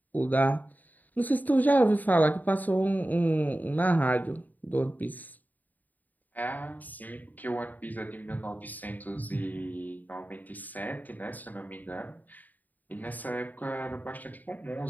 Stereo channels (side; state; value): right; late; 0.083 ms